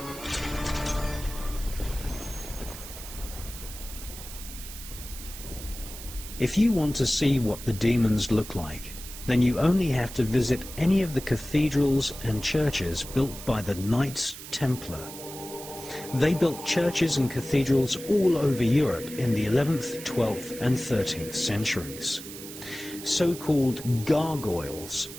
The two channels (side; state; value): right; noise; hiss, 12 dB below the sound